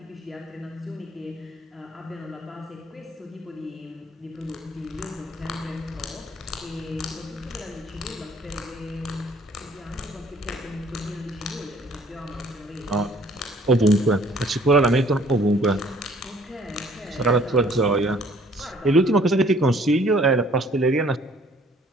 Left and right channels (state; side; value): normal; both; correlation 0.58